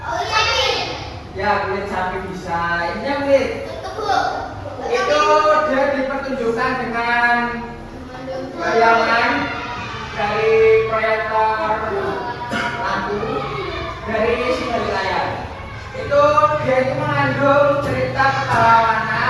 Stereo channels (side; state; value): both; identical; correlation 1.00